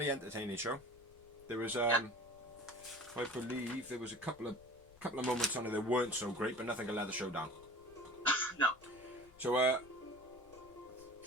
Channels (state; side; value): noise; left; rumble, 25 dB below the sound